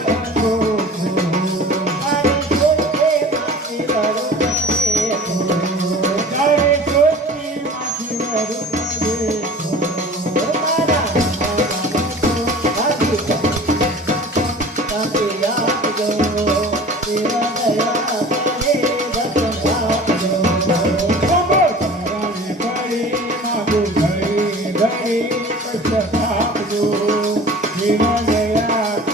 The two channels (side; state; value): both; normal; correlation 0.42